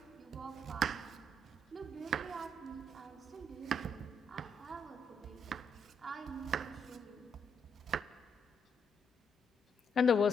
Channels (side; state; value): both; normal; correlation 0.76